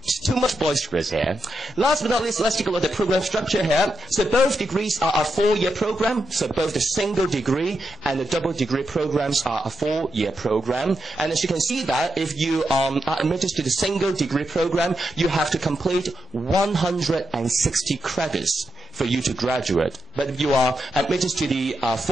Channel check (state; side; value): normal; both; correlation 0.86